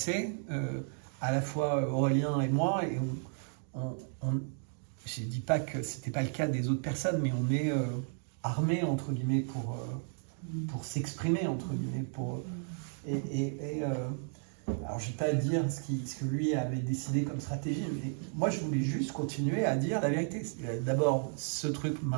à la fois Aurélien et moi, et je ne dis pas que ce n'était pas le cas des autres personnes, mais on est armé, entre guillemets, pour s'exprimer, entre guillemets. Alors, je ne vais pas dire ce que lui avait décidé comme stratégie, mais moi, je voulais juste continuer à dire la vérité. D'abord, ce truc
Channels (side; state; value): left; silent; 55 dB below the other